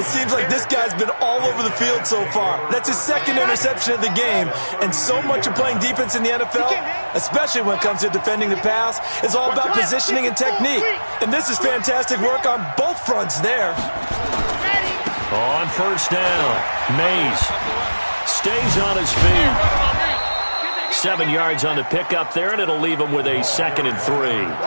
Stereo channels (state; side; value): inverted; both; correlation -1.00